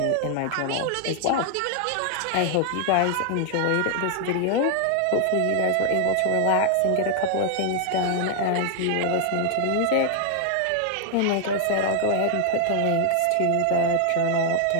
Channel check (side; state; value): both; different; correlation 0.00